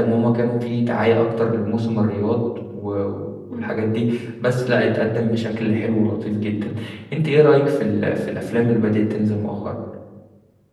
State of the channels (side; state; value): both; identical; correlation 1.00